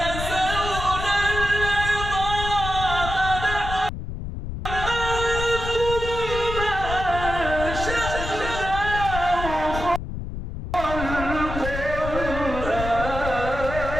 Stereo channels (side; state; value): left; noise; rumble, 6 dB below the sound